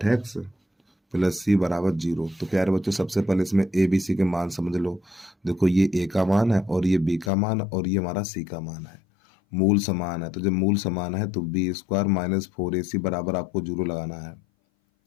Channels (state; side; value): drops out; right; at 7.3 s